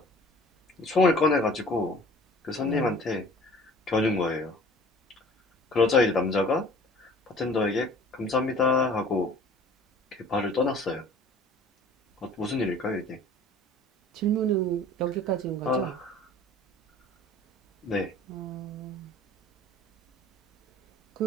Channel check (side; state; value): both; normal; correlation 0.48